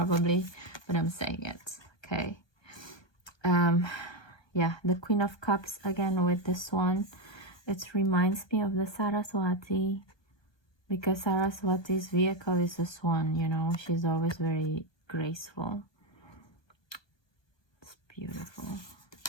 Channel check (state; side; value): late; right; 1.2 ms